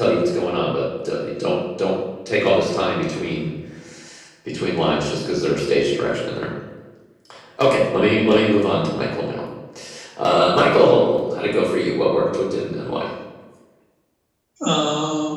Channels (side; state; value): both; identical; correlation 1.00